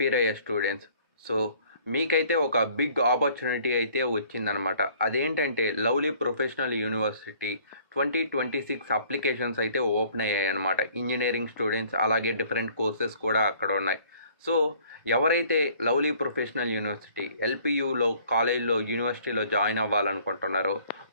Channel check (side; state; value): both; inverted; correlation -0.57